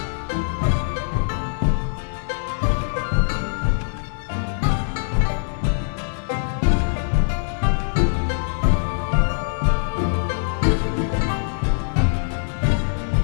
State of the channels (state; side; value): silent; right; digital silence